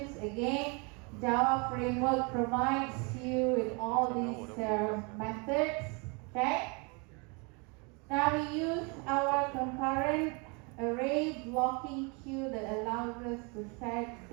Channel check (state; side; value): quieter; left; 31.9 dB